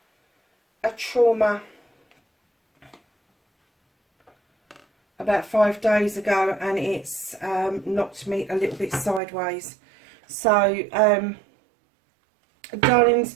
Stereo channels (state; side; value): drops out; left; at 9.2 s